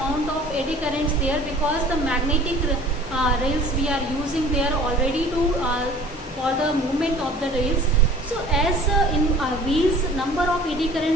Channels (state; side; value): normal; both; correlation 0.47